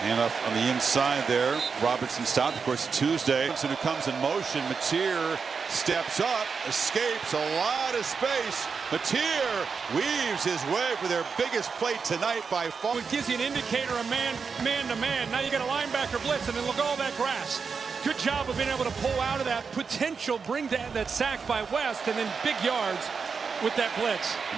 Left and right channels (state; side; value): quieter; left; 5.5 dB